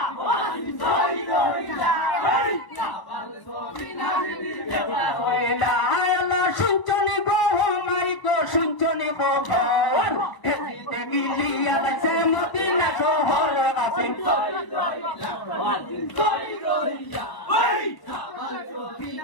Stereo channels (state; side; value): late; right; 1.0 ms